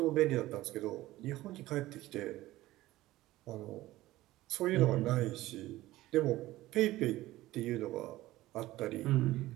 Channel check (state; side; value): quieter; left; 16.7 dB